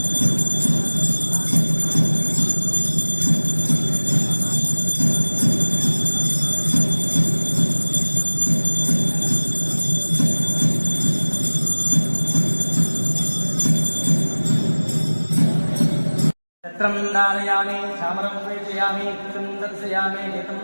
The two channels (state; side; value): inverted; both; correlation -1.00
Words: छत्रं धारयामि चामरं प्रेषयामि कृतं दर्शयामि नेतं